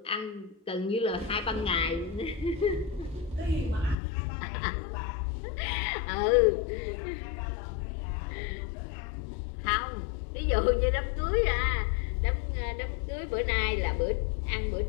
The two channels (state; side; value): drops out; right; at 4.0 s